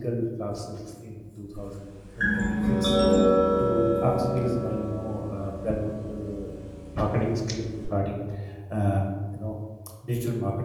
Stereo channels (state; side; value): identical; both; correlation 1.00